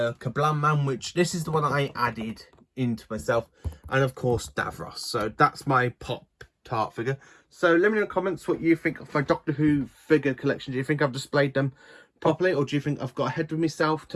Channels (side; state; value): both; identical; correlation 1.00